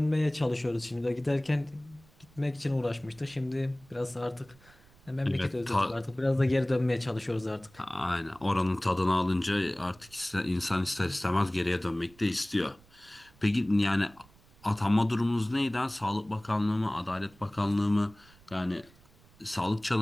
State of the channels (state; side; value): noise; right; rumble, 27 dB below the sound